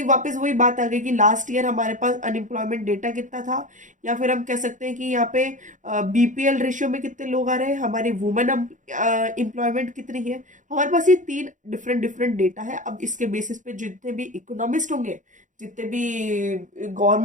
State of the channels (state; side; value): late; left; 0.37 ms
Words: वापस वही बात आ गई कि लास्ट ईयर हमारे पास अनएम्प्लॉयमेंट डेटा कितना था, या फिर हम कह सकते हैं कि यहाँ पे बीपीएल रेशियो में कितने लोग आ रहे हैं, हमारी वुमेन एम्प्लॉयमेंट कितनी है। हमारे पास ये 3 डिफरेंट डिफरेंट डेटा है। अब इसके बेसिस पे जितने भी इकोनॉमिस्ट होंगे, जितने भी